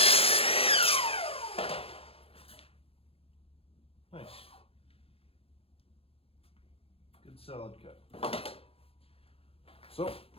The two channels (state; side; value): late; right; 0.28 ms